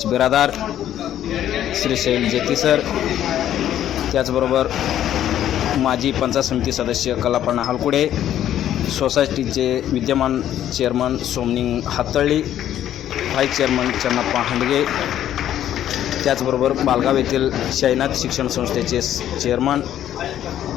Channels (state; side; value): quieter; right; 11.3 dB